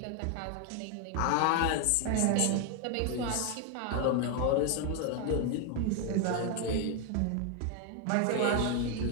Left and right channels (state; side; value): different; both; correlation 0.01